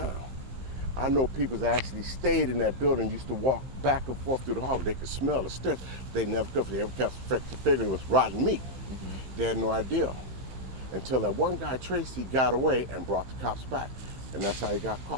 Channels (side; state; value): left; late; 15 ms